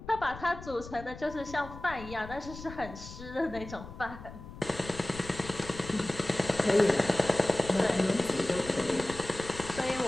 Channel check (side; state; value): left; noise; rumble, 14 dB below the sound